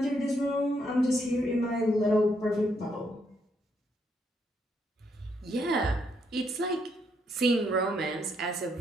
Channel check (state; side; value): normal; both; correlation 0.75